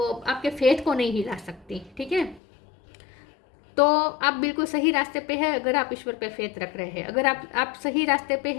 आपके फेथ को नहीं हिला सकती। ठीक है, तो आप बिल्कुल सही रास्ते पे है अगर आप ईश्वर पे फेथ रख रहे हैं। अगर आप सही रास्ते पे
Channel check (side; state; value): right; drops out; at 2.4 s